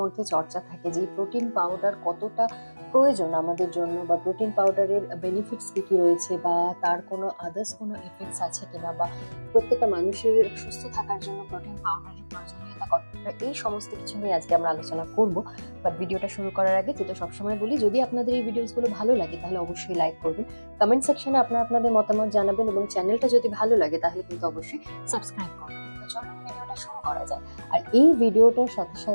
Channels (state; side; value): inverted; both; correlation -1.00